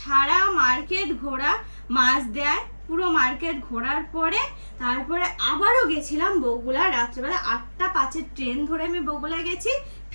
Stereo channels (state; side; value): inverted; both; correlation -1.00